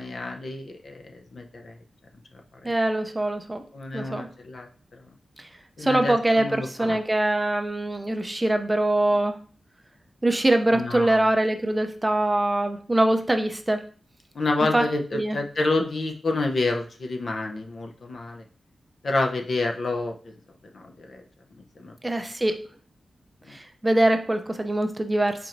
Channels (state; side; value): normal; both; correlation 0.95